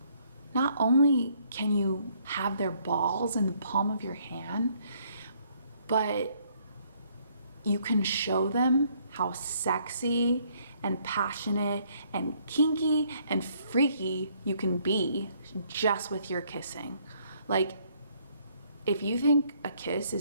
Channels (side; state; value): both; inverted; correlation -0.67